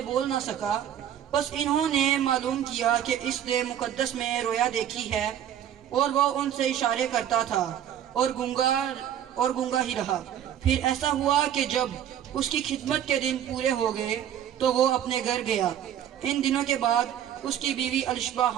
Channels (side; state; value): left; quieter; 10.1 dB